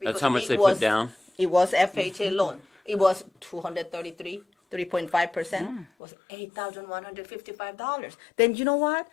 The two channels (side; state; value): right; drops out; at 5.9 s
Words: That's how much they put down? It was FHA loan. It was 3.5%, was $8,155. Then you know what?